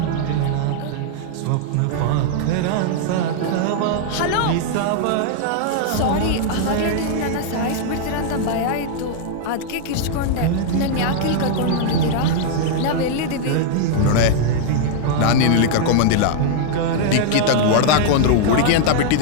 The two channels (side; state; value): both; different; correlation -0.01